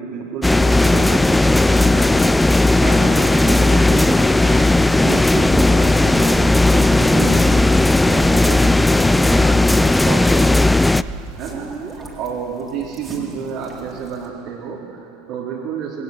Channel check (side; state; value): both; normal; correlation 0.95